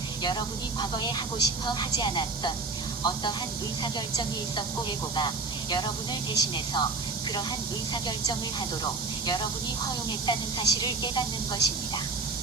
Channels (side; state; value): left; quieter; 4.0 dB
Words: 여러분이 과거에 하고 싶어 하지 않았던 어떠한 의사결정이 있었고 에고가 여러분을 대신해서 그러한 의사결정을 하도록 여러분이 허용했다는 사실을 깨닫는 것입니다.